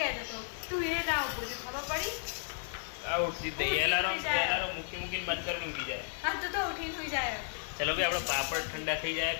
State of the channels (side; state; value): right; silent; 55 dB below the other